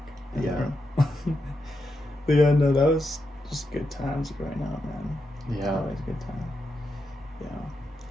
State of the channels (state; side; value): normal; both; correlation 0.85